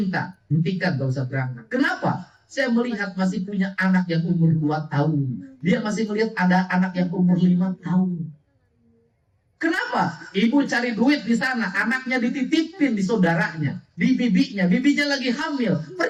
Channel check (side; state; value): both; identical; correlation 1.00